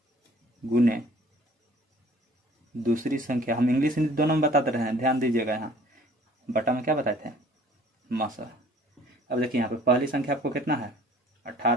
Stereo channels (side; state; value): both; normal; correlation 0.54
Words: गुने दूसरी संख्या, हम इंग्लिश हिंदी दोनों में बताते रहे हैं, ध्यान दीजिएगा। यहाँ बटा में क्या बताए थे, मसा। अब देखिए यहाँ पे पहली संख्या आपको कितना है